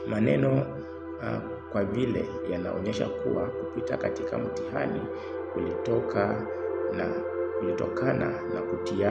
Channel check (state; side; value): identical; both; correlation 1.00